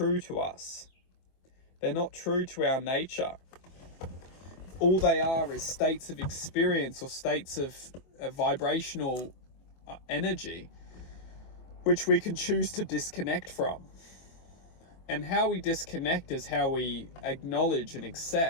to us. They're not true to our nature. All they are is states of experience or states of vibrational energy which we can choose to disconnect from. And how we disconnect is how we acknowledge and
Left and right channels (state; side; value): late; right; 24 ms